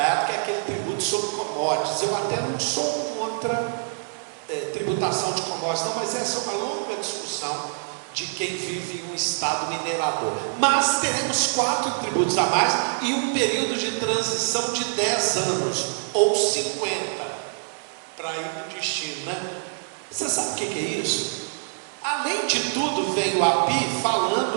que é aquele tributo sobre commodities. Eu até não sou contra tributação de commodities, não, mas essa é uma longa discussão de quem vive em um estado minerador. Mas teremos 4 tributos a mais e um período de transição de 10 anos, ou 50, para ir no destino, né? Você sabe o que é isso? Além de tudo, veio o API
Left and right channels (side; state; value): left; silent; digital silence